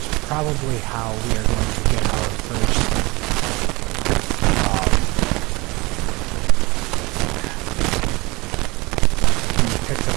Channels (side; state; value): left; quieter; 24.0 dB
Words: probably how we are going to get our first can be picked up